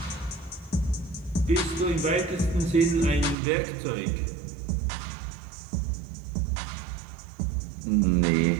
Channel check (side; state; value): left; drops out; at 3.4 s